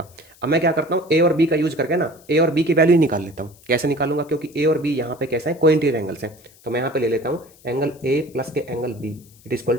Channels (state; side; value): noise; left; hiss, 27 dB below the sound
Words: अब मैं क्या करता हूँ, ए और बी का यूज करके ना ए और बी की वैल्यू निकाल लेता हूँ। कैसे निकालूंगा, क्योंकि ए और बी यहाँ पे कैसे हैं, कोइंटीरियर एंगल्स हैं। तो मैं यहाँ पे ले लेता हूँ एंगल ए प्लस के angle B it is equal